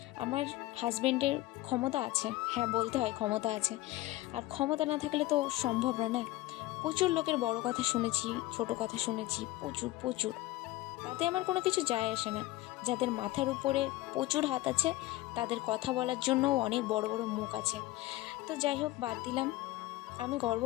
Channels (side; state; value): right; quieter; 18.0 dB